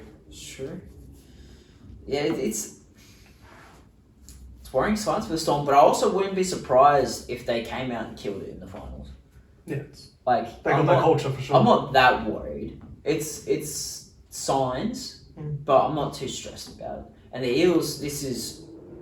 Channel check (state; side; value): identical; both; correlation 1.00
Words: It's true. Yeah, it's worrying signs for the Storm, but I also wouldn't be surprised if they came out and killed it in the finals. Yeah. Like, They got that culture for sure. I'm not that worried. It's signs, but I'm not too stressed about it. And the Eels, this is